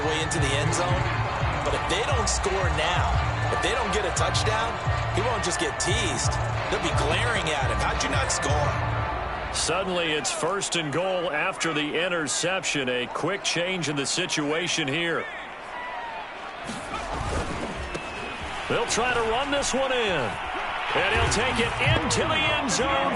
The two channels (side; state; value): both; identical; correlation 1.00